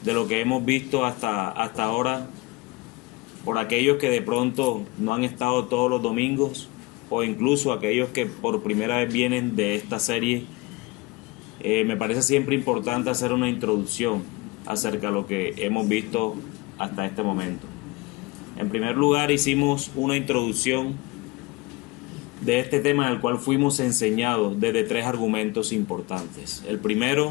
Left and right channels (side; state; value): right; quieter; 23.2 dB